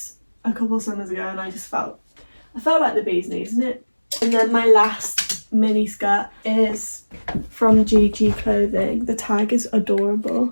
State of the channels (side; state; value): both; inverted; correlation -1.00